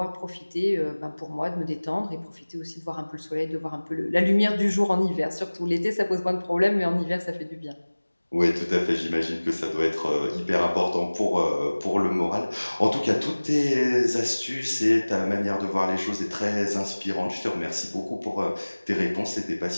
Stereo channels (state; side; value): inverted; both; correlation -1.00